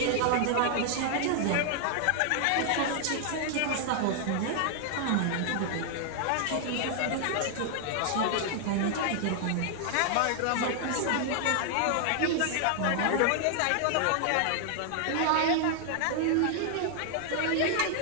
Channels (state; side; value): different; both; correlation 0.00